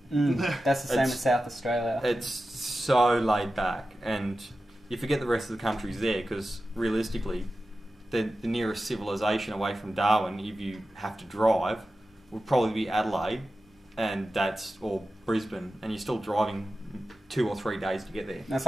That's the same as South Australia. It's so laid back, and you forget the rest of the country's there, because realistically, the nearest civilization away from Darwin, if you have to drive, would probably be Adelaide, and or Brisbane, and you're still driving 2 or 3 days to get there. That's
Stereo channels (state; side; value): normal; both; correlation 0.93